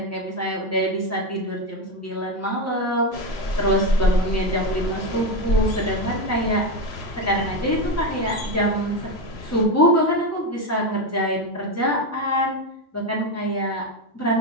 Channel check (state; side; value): normal; both; correlation 0.12